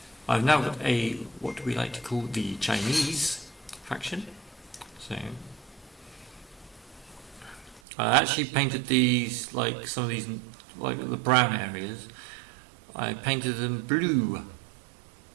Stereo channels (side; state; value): left; drops out; at 7.8 s